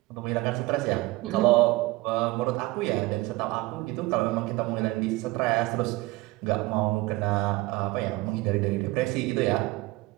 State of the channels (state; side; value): quieter; left; 21.1 dB